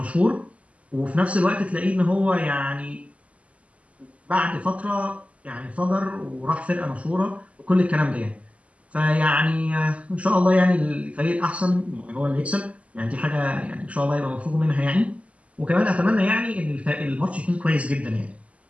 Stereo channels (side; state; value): left; late; 0.065 ms